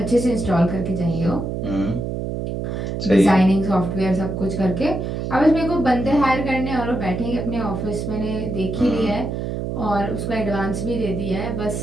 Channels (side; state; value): right; noise; hum, 3 dB below the sound